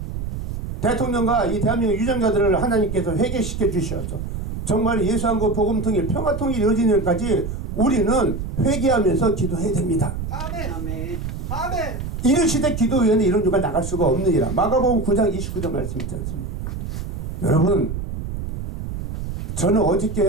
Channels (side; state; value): right; noise; rumble, 5 dB below the sound